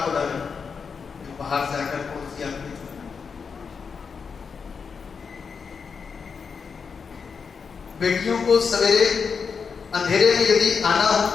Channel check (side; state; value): right; quieter; 5.8 dB